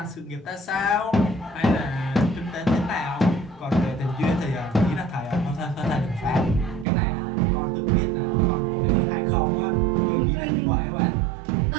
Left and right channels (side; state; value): left; drops out; at 6.9 s